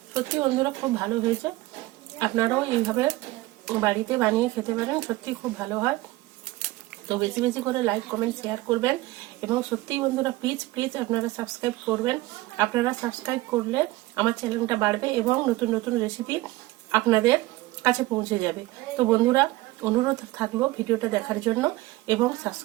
সত্যি বন্ধুরা খুব ভালো হয়েছে, আপনারাও এইভাবে বাড়িতে বানিয়ে খেতে পারেন, সত্যি খুব ভালো হয়। তো বেশি বেশি করে লাইক কমেন্ট শেয়ার করবেন এবং সত্যিই বন্ধুরা প্লিজ আপনারা সাবস্ক্রাইব করবেন। আপনারা সাবস্ক্রাইব করলে আমার চ্যানেলটা বাড়বে এবং নতুন নতুন রেসিপি আপনাদের কাছে পৌঁছে যাবে। তো বন্ধুরা অনুরোধ থাকলো ভিডিওটা দেখার জন্য এবং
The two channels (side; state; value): left; quieter; 18.8 dB